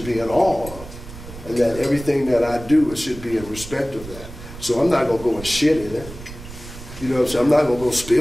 be in awe of, and that everything that I do, it should be in respect of that. So I'm not gonna go and shit in it. You know what I'm saying? I'm not gonna go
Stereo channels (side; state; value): right; noise; rumble, 14 dB below the sound